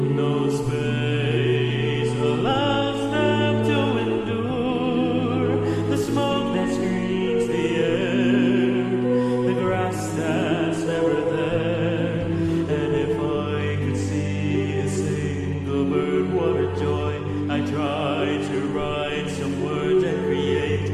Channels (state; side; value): identical; both; correlation 1.00